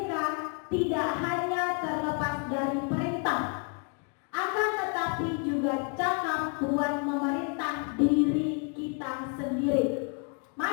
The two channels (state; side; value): quieter; right; 37.7 dB